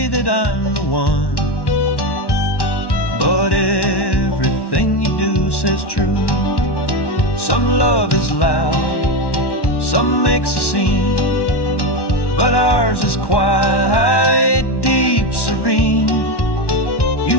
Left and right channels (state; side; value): late; right; 1.1 ms